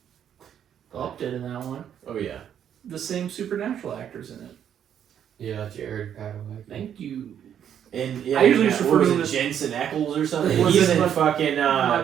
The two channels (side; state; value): left; quieter; 9.3 dB